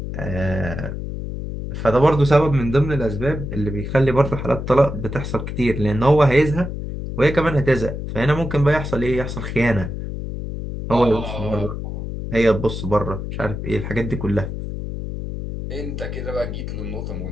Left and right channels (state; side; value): noise; left; hum, 6 dB below the sound